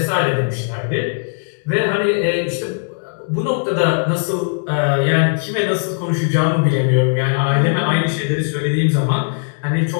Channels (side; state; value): right; silent; digital silence